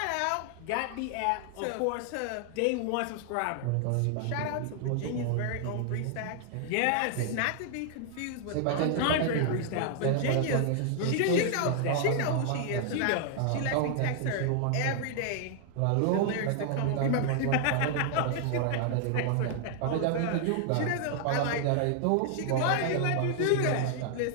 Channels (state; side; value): different; both; correlation 0.00